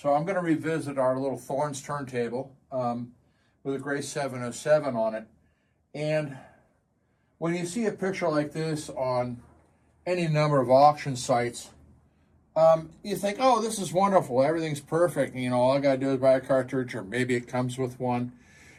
I'm going to revisit our little Thorens turntable with a gray 707 on it. And when you see a picture like this on any number of auction sites, you think, oh, this is wonderful, everything's perfect, you know, all I got to do is buy a cartridge, or maybe it comes with one,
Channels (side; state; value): both; identical; correlation 1.00